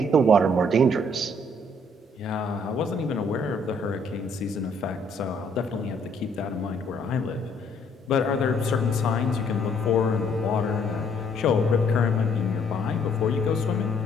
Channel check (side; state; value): both; normal; correlation 0.65